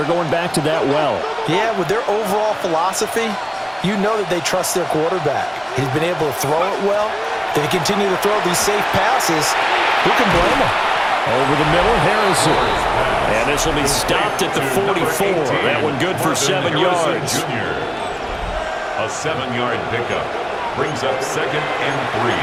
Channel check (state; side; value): identical; both; correlation 1.00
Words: going back to that well. Yeah, with their overall philosophy, you know that they trust their quarterback. He's been able to throw it well. They continue to throw these safe passes. Who can blame them? Over the middle, Harrison. And this will be stopped at the 44. That one good for 7 yards. A 7-yard pickup brings up 2nd and 3